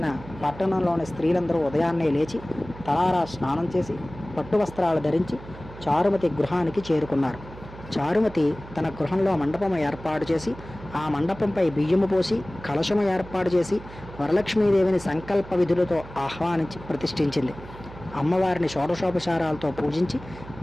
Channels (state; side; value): noise; right; hum, 16 dB below the sound